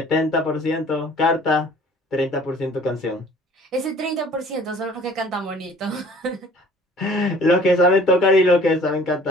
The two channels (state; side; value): normal; both; correlation 0.51